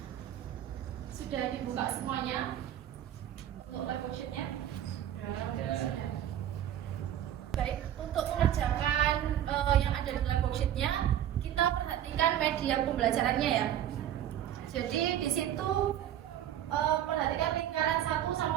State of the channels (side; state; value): left; quieter; 11.1 dB